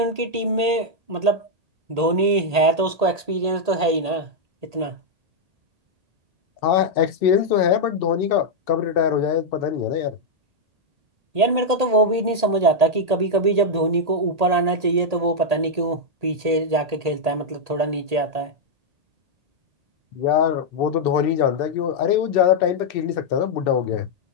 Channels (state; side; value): late; left; 1.8 ms